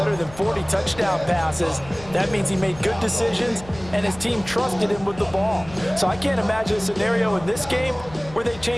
than 40 touchdown passes. That means he made good decisions, and his team trusted him with the ball. So I can't imagine a scenario in this game where they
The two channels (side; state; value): left; noise; hum, 18 dB below the sound